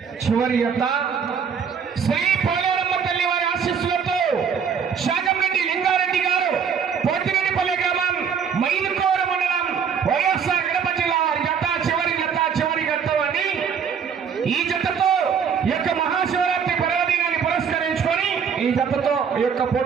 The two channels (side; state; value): left; quieter; 6.9 dB